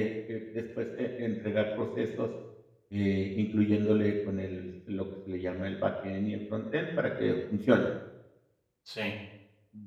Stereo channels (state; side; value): identical; both; correlation 1.00